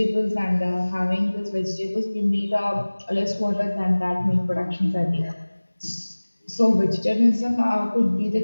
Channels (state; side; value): inverted; both; correlation -1.00